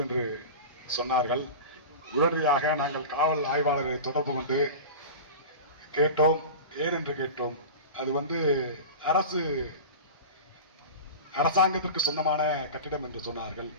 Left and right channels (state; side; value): inverted; both; correlation -0.30